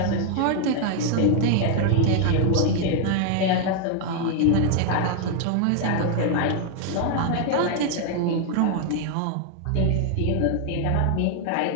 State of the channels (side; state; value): both; different; correlation 0.00